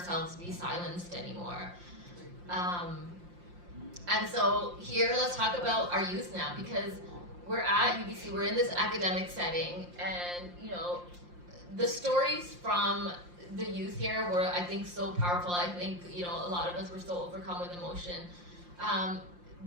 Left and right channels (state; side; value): late; left; 5.7 ms